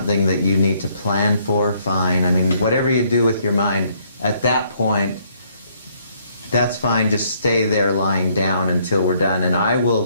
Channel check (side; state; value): both; inverted; correlation -0.68